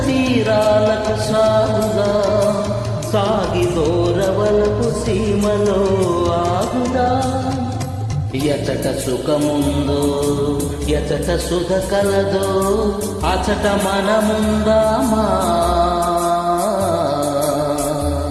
తీరాలకు సాగుదా సాగి దూరవలపు సీమలో ఆగుదా ఎచట సుఖముందో ఎచట సుఖ కలదో అచట మనముందామా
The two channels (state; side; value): identical; both; correlation 1.00